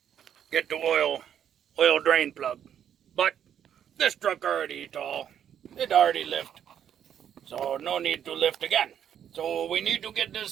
get the oil drain plug. But this truck already tall. It already lift. So no need to lift again. So we need to get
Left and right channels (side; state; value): left; quieter; 9.3 dB